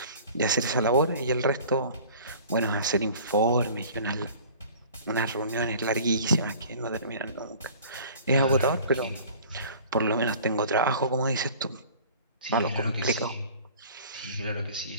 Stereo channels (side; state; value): both; inverted; correlation -0.46